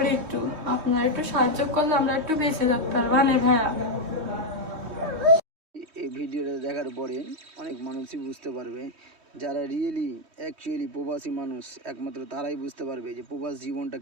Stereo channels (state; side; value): late; left; 3.2 ms